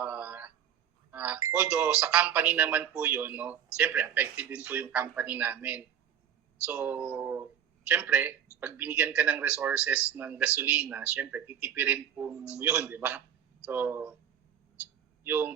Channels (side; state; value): left; quieter; 8.9 dB